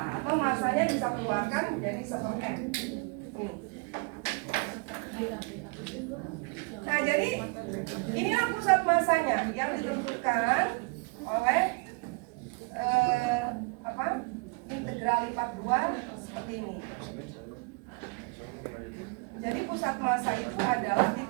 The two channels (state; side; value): quieter; left; 31.6 dB